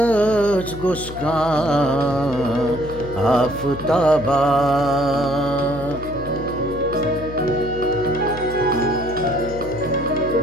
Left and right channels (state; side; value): noise; left; hum, 12 dB below the sound